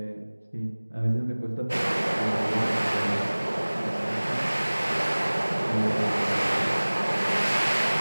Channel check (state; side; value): inverted; both; correlation -1.00